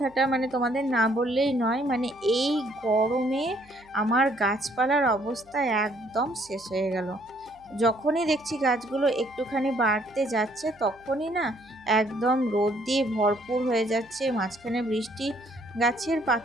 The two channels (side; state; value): right; noise; hum, 29 dB below the sound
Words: মানে তোমাদের না বললেই নয়, মানে এই গরমে আমার গাছপালার অবস্থা একদম শেষ হয়ে গেল। যখনই দেখছি গাছগুলো একটুখানি বাড়তে যাচ্ছে তখনই না একদম রোদ দিয়ে ভরপুর হয়ে যাচ্ছে, মাঝখানে বৃষ্টি, গাছের